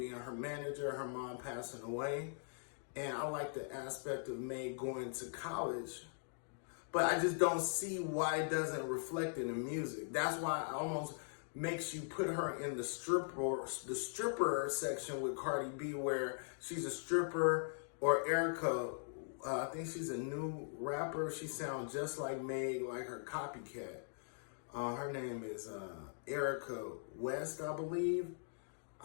her manager, her mom passing away. And I like the aspect of Meg going to college. But I just don't see why it doesn't reflect in the music. That's why it almost makes you put her in the stripper section with Cardi B, where she's a stripper, or Erica. I think she's a new rapper. She sounds just like Meg, like her copycat. Her name is Erica West, I believe.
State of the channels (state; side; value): silent; right; digital silence